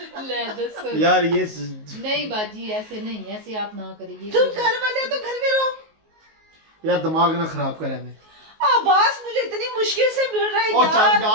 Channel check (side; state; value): left; late; 19 ms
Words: ले दस। यार। ये नहीं बाजी ऐसे नहीं, ऐसे आप ना करिए। तुम घर वाले हो तो घर में रहो। यार दिमाग ना खराब करे मैं। आवाज मुझे इतनी मुश्किल से मिल रहा है ओ चल यार।